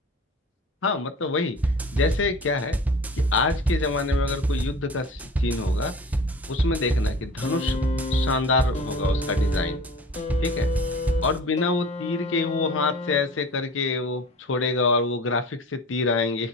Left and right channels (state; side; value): normal; both; correlation 0.40